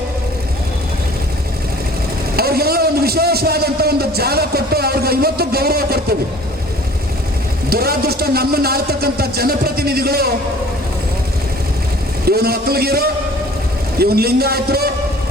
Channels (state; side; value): normal; both; correlation 0.49